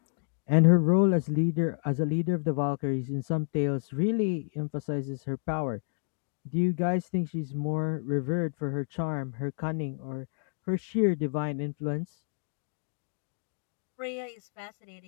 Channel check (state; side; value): silent; right; digital silence